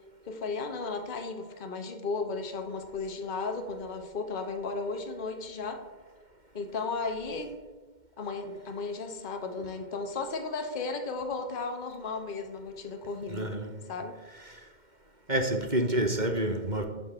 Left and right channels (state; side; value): late; left; 2.1 ms